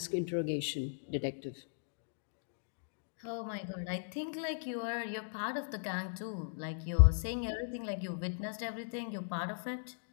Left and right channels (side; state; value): right; silent; digital silence